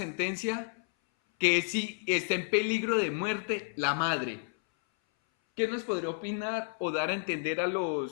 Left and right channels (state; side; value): silent; right; 57 dB below the other